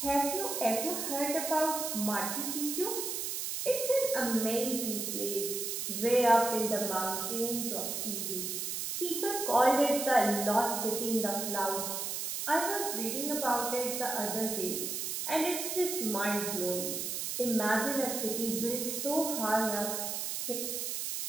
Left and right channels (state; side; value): noise; right; hiss, 3 dB below the sound